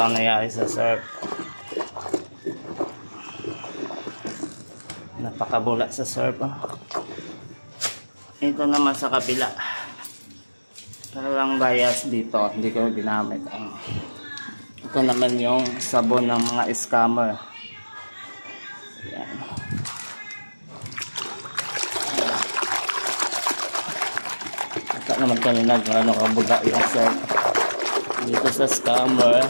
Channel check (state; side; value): inverted; both; correlation -1.00